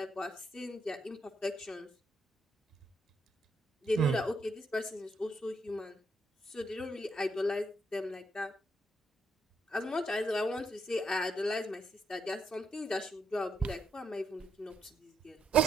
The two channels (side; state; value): both; normal; correlation 0.77